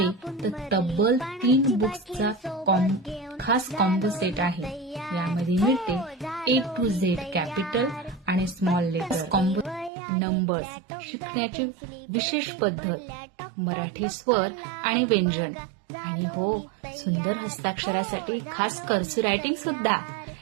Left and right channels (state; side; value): drops out; left; at 9.9 s